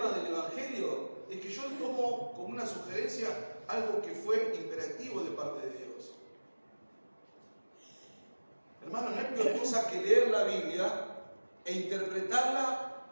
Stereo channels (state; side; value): inverted; both; correlation -1.00